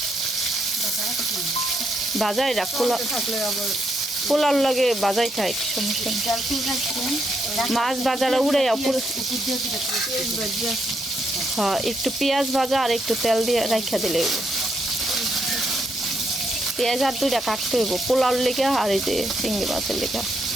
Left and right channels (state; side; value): normal; both; correlation 0.78